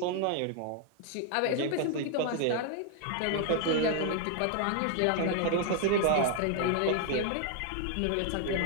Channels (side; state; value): both; different; correlation 0.00